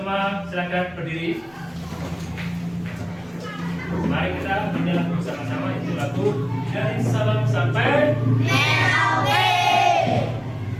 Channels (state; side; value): noise; left; rumble, 29 dB below the sound